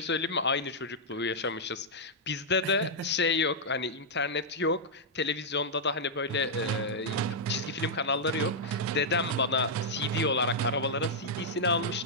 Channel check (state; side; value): normal; both; correlation -0.07